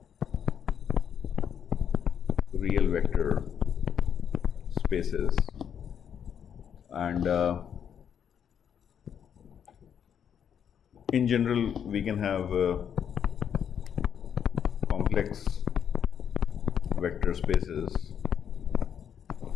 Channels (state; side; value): quieter; right; 8.3 dB